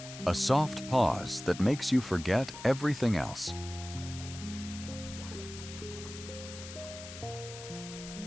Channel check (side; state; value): left; noise; hiss, 12 dB below the sound